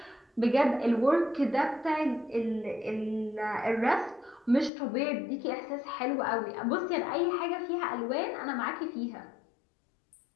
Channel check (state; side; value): drops out; right; at 4.7 s